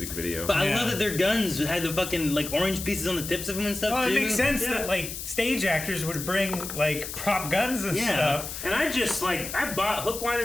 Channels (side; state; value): left; noise; hiss, 8 dB below the sound